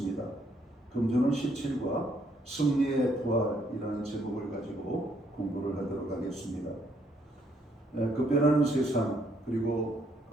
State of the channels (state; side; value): normal; both; correlation 0.71